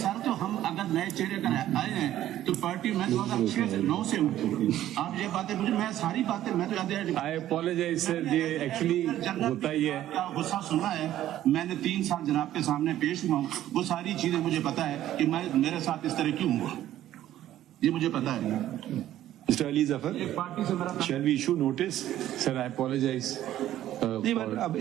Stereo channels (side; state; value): left; quieter; 12.9 dB